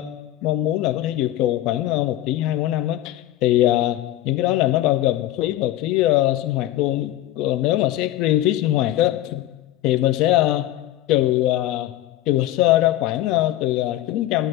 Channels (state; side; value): quieter; right; 14.2 dB